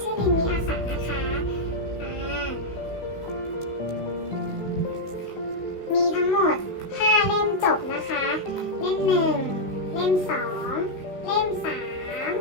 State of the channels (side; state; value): right; late; 16 ms